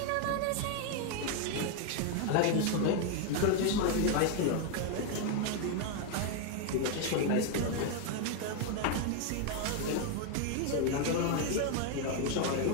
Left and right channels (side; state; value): both; different; correlation 0.01